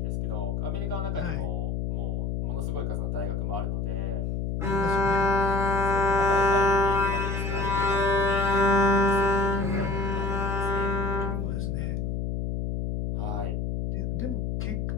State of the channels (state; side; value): noise; left; hum, 1 dB below the sound